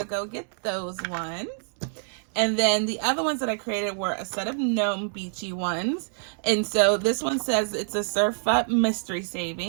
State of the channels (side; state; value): left; silent; 61 dB below the other